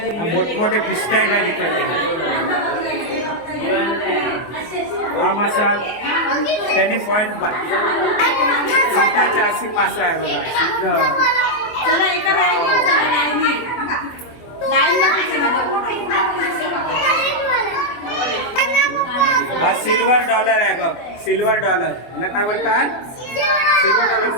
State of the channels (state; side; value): late; right; 24 ms